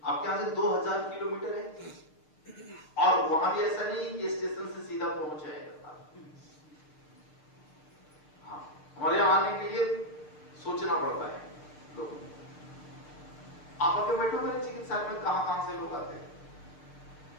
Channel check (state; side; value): late; right; 6.6 ms